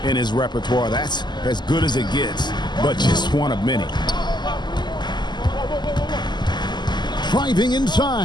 in his repertoire. That's as good as it gets, but just one of many. Driving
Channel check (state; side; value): late; right; 0.21 ms